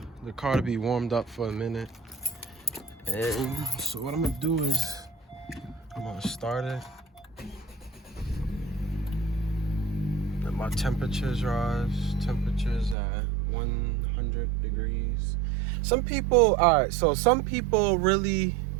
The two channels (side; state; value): left; drops out; at 13.0 s